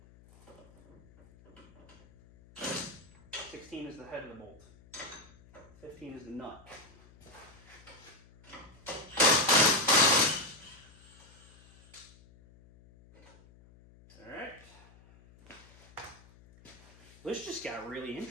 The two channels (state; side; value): noise; left; hum, 25 dB below the sound